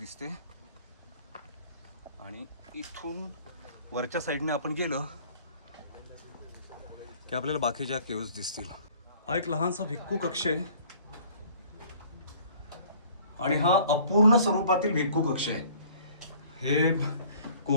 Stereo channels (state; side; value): inverted; both; correlation -0.53